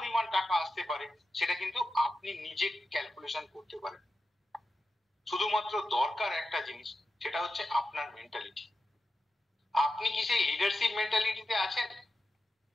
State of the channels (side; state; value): both; normal; correlation 0.90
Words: টাকা আসতে পারে সেটা কিন্তু আপনি নিজে ক্যালকুলেশন করতে পারেন। শুধুমাত্র দরকার একটা জিনিস, সেটা হচ্ছে আপনার মেন্টালিটি। আপনি কি সেই লিডারশিপ মেন্টালিটিতে আছেন?